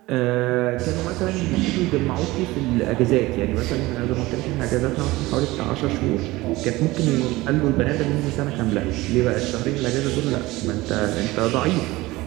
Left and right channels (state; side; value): quieter; left; 19.7 dB